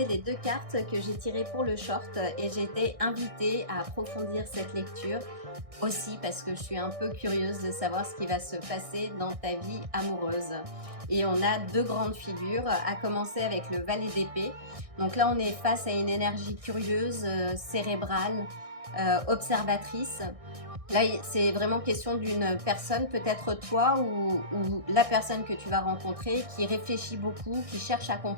les deux cartes que j'ai tirées pour le short et j'ai été invitée à approfondir cette lecture aussi parce que je suis un peu curieuse de savoir ce qui va se passer dans ta vie amoureuse. Et on a deux grandes figures, à commencer avec le valet d'épée. Donc là, on est face à une énergie curieuse, cérébrale, observatrice. Là, c'est vraiment question d'une personne, peut-être toi ou la personne que tu vas rencontrer, qui réfléchit beaucoup, qui cherche à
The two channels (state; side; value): late; left; 1.6 ms